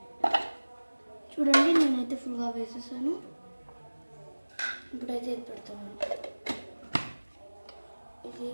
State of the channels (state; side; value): inverted; both; correlation -1.00